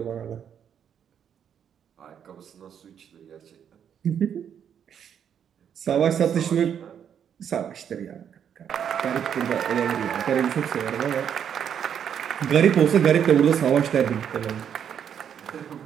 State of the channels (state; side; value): quieter; left; 8.5 dB